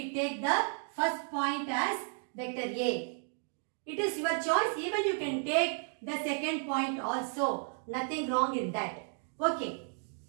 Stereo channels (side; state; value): left; silent; 56 dB below the other